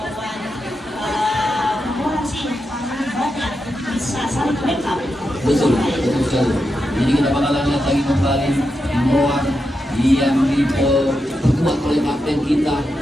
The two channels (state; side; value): normal; both; correlation 0.87